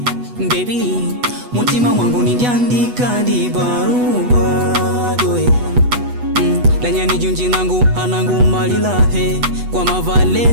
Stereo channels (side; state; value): left; late; 8.2 ms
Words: Baby, mutima wangu nindiandika di barua doe. Lanyani junji nangu anangu malilahe. Kwa